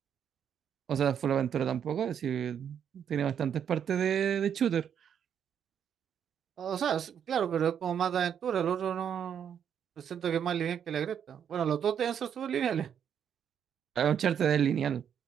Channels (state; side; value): quieter; left; 8.4 dB